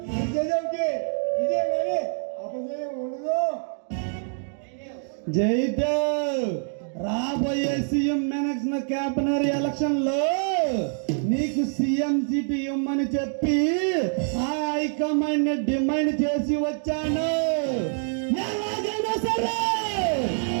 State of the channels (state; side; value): silent; left; 61 dB below the other